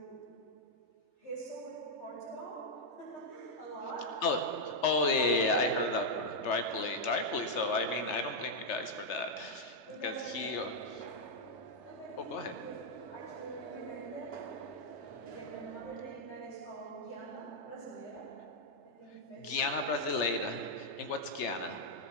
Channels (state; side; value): late; right; 3.3 ms